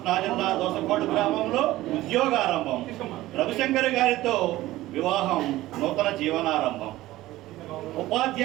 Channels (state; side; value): quieter; left; 16.6 dB